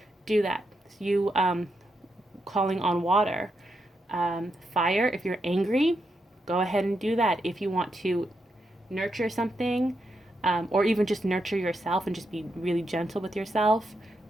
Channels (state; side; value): normal; both; correlation 0.83